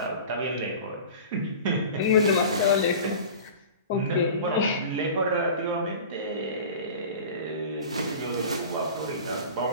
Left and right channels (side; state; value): both; inverted; correlation -0.37